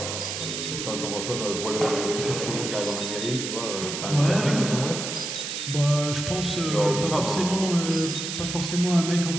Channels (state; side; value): noise; right; hiss, 5 dB below the sound